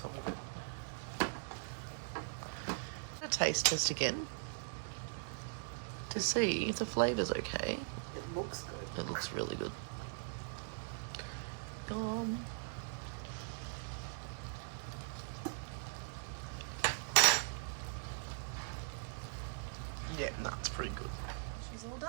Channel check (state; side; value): silent; left; digital silence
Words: of it. A taste test again to see if the flavour's okay. It looks good. It looks really good. Yum. Yeah, that's pretty good. She's all